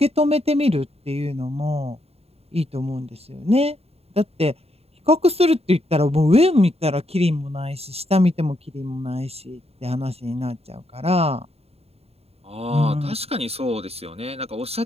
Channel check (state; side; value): late; left; 0.29 ms